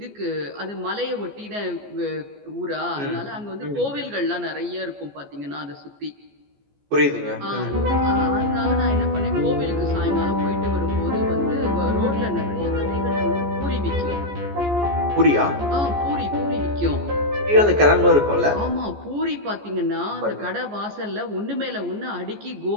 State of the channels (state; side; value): late; left; 14 ms